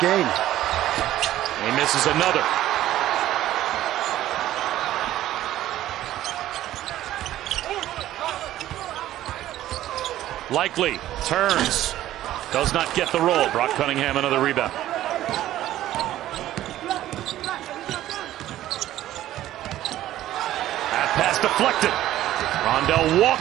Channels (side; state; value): left; quieter; 13.7 dB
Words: He misses another. Likely turns. Does not get the roll. Brock Cunningham another rebound. Pass deflected. Rondell